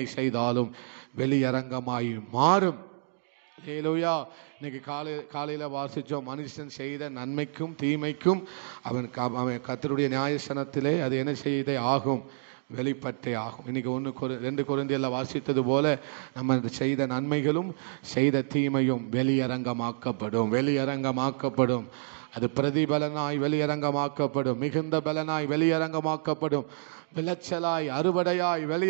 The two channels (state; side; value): silent; left; digital silence